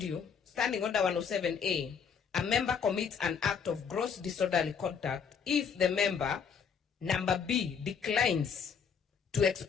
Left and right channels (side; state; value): right; quieter; 6.6 dB